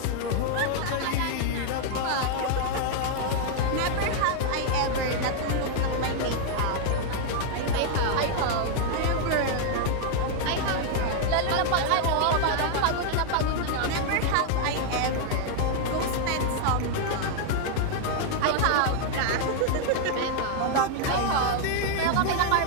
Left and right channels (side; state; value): both; different; correlation 0.00